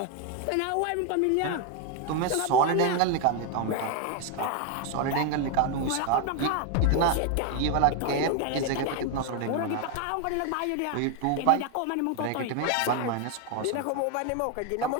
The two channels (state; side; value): different; both; correlation 0.01